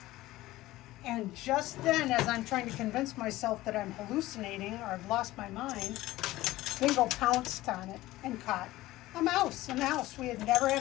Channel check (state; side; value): quieter; right; 17.1 dB